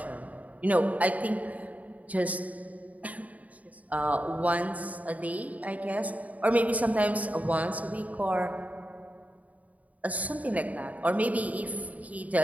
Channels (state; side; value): late; left; 0.072 ms